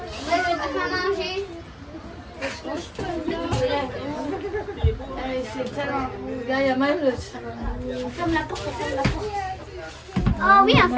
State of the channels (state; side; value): identical; both; correlation 1.00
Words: je vais pas manger. C'est tellement. Regarde, il y a même le. Ferme la porte, ferme la porte. Oh oui, on